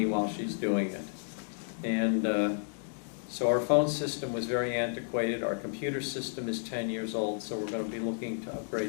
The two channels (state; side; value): silent; right; digital silence